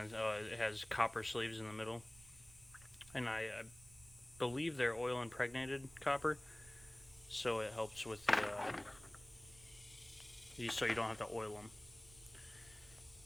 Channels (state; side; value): noise; right; rumble, 22 dB below the sound